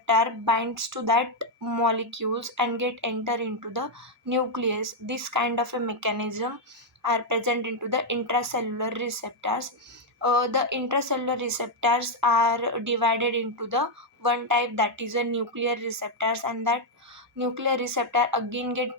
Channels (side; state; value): both; normal; correlation 0.00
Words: binds to that molecules and get enter into the nucleus. This kind of a mechanism are present into the intracellular receptors. The intracellular receptors are divided into the one type, that is a nuclear receptors, and that nuclear receptor again get